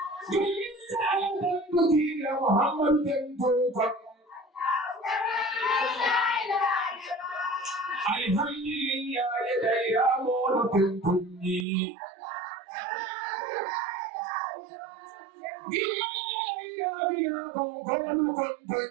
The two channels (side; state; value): left; drops out; at 11.7 s